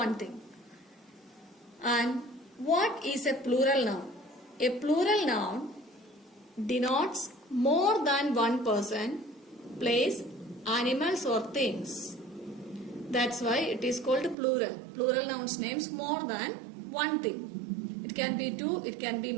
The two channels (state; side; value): drops out; left; at 14.4 s